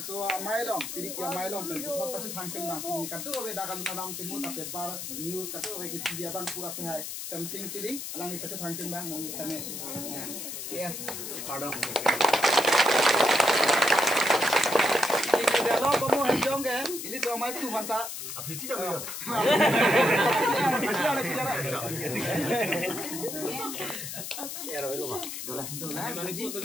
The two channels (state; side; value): noise; left; hiss, 7 dB below the sound